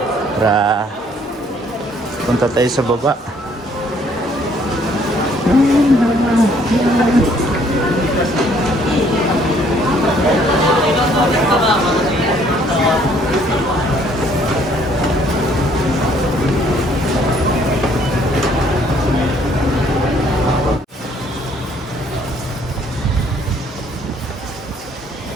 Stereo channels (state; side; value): normal; both; correlation 0.63